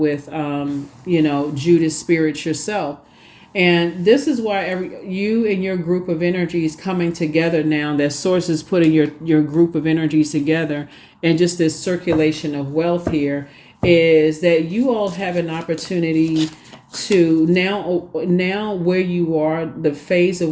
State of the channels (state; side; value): identical; both; correlation 1.00